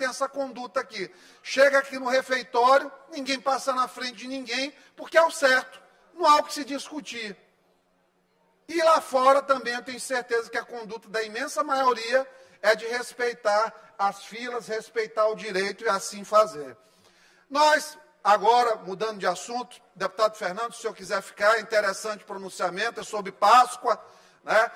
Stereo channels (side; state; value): both; identical; correlation 1.00